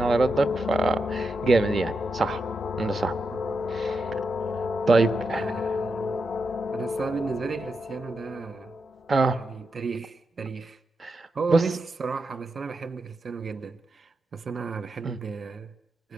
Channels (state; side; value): normal; both; correlation 0.86